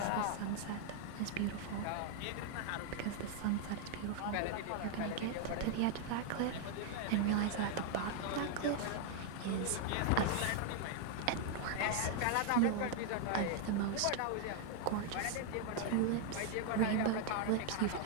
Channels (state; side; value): different; both; correlation 0.00